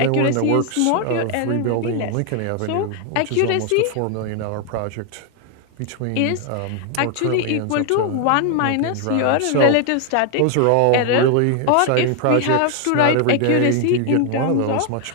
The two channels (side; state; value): both; different; correlation 0.00